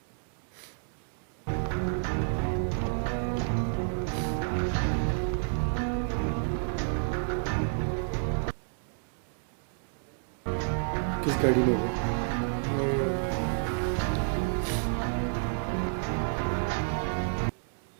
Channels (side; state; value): left; silent; 58 dB below the other